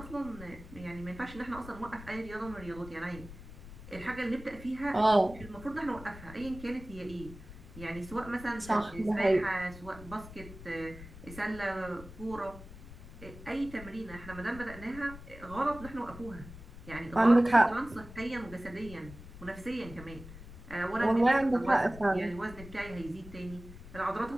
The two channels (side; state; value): left; noise; rumble, 15 dB below the sound